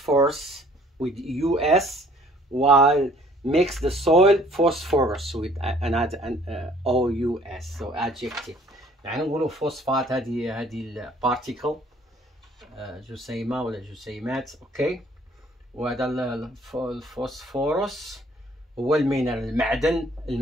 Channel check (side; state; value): both; normal; correlation 0.57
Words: with US, while makes the soil phosphorus with an OUS. So adjective. يعني نقولوا فوسفات هذه البارتيكل جسيمة ولا جسيمات. اوكي، وهذا الفوسفورس هو المينرال،